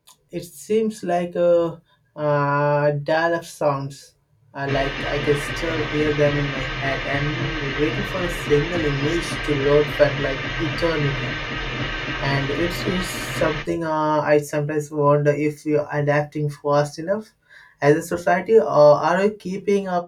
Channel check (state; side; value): identical; both; correlation 1.00